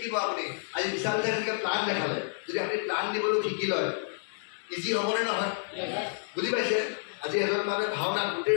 আপুনি আজি বিশাল যেনেকৈ প্লান দেখালে যদি আপুনি প্লান দিবলৈও শিকি লয় ইজি হ'বনে নহয় বুজি পাইছে আজি এজন মানুহে ভাওনা গোটেই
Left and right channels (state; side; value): silent; right; digital silence